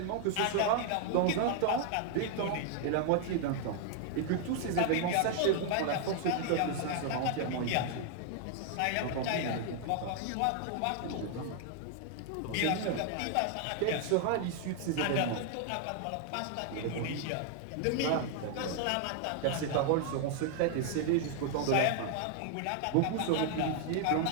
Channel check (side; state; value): both; different; correlation 0.00